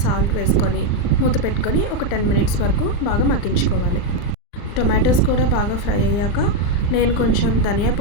సాల్ట్ వేసుకొని మూత పెట్టుకొని ఒక 10 మినిట్స్ వరకు బాగా మగ్గించుకోవాలి. టొమాటోస్ కూడా బాగా ఫ్రై అయ్యాక నేను కొంచెం ధనియా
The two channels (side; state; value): right; late; 40 ms